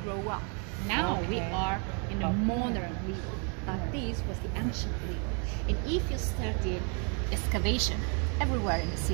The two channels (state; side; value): quieter; left; 37.9 dB